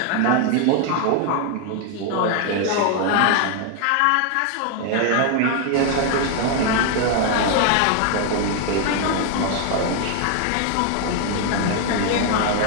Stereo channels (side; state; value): both; different; correlation 0.00